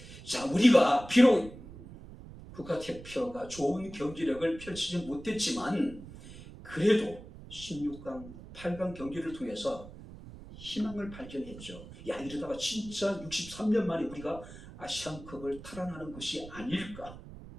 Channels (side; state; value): right; noise; rumble, 15 dB below the sound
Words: 자, 우리가 비록 국가대표가 좋은 경기력을 펼치지 못했지만 그래도 16강, 8강 경기를 통해서 희망을 발견했죠. 야, 이러다가 진짜 63년 만에 우리가 아시안컵을 탈환하는 것이 아닐까.